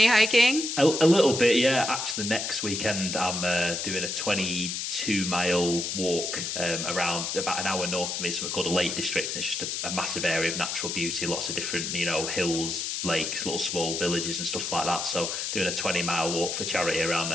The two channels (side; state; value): left; noise; hiss, 3 dB below the sound